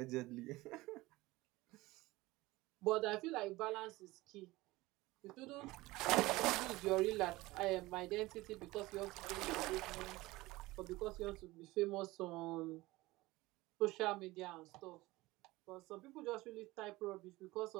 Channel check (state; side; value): quieter; left; 19.8 dB